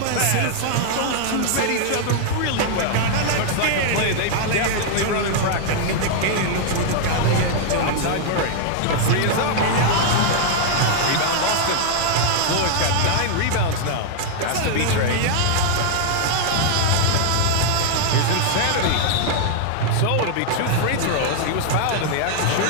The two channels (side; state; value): both; different; correlation -0.01